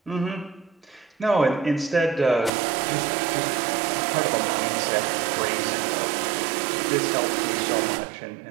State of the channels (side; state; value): left; drops out; at 2.5 s